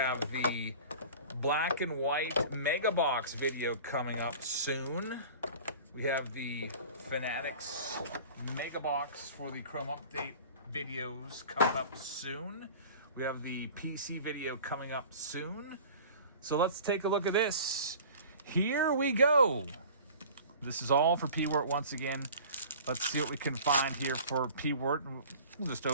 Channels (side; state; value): both; inverted; correlation -0.42